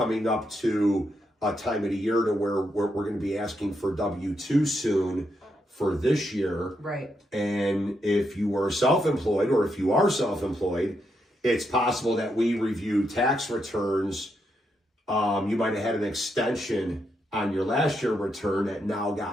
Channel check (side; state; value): both; normal; correlation 0.81